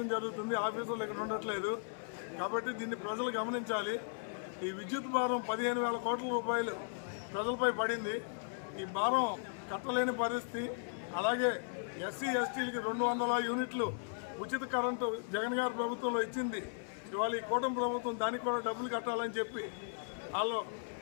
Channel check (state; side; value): silent; right; 53 dB below the other